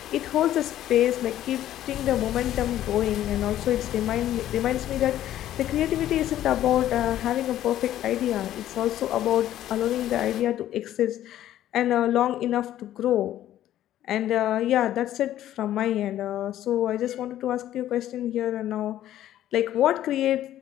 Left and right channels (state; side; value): quieter; right; 12.6 dB